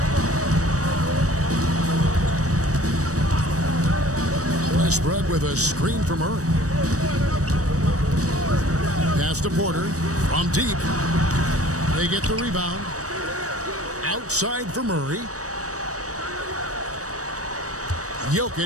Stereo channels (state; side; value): late; left; 0.66 ms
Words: Westbrook with a screen for Murray. Pass to Porter from deep. They get the rebound. Outside for Murray.